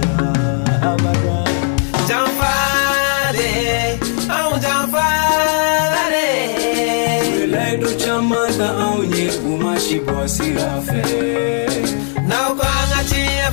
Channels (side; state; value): right; silent; 57 dB below the other